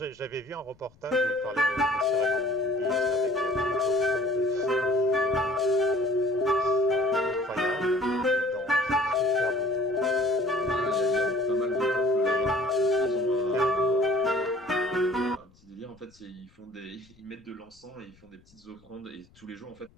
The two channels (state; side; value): noise; left; rumble, 29 dB below the sound